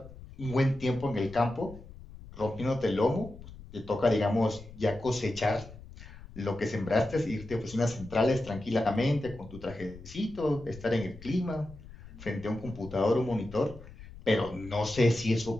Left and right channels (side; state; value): left; noise; rumble, 17 dB below the sound